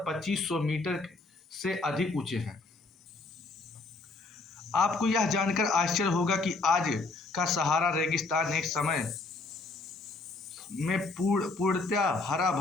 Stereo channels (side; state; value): right; quieter; 3.6 dB